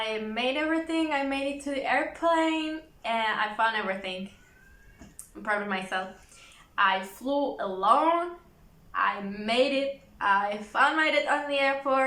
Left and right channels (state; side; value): identical; both; correlation 1.00